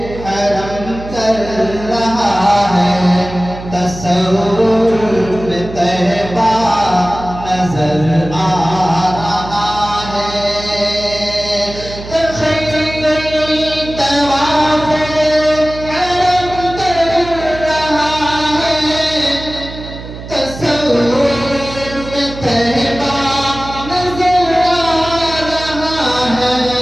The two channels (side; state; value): right; noise; hum, 12 dB below the sound